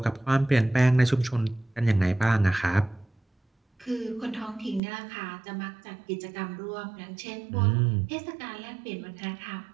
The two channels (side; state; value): left; drops out; at 4.8 s